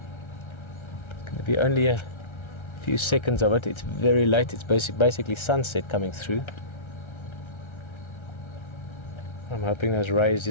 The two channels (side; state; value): right; late; 1.3 ms